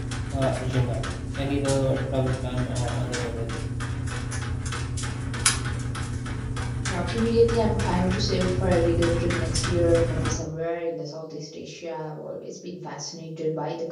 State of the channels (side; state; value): both; identical; correlation 1.00